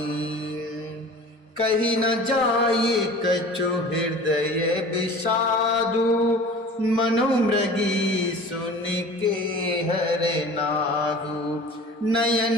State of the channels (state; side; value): normal; both; correlation 0.41